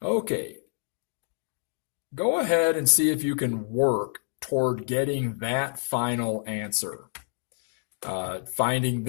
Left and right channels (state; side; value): silent; right; digital silence